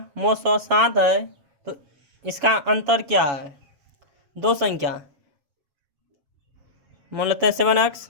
मौसो 7 है, तो इसका अंतर क्या है? दो संख्या मान लेते हैं 7x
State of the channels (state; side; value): late; left; 7.3 ms